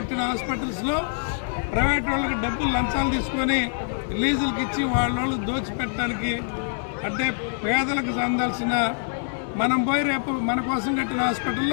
హాస్పిటల్స్లో ప్రైవేట్ వాళ్ళకి డబ్బులు లంచాలు తీసుకొని లీజులకి ఇచ్చి వాళ్ళు దోచిపెట్టడానికి, అంటే పేదలకు అందాల్సిన మనం పోయి రేపు మన కోసం కట్టిన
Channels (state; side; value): silent; right; digital silence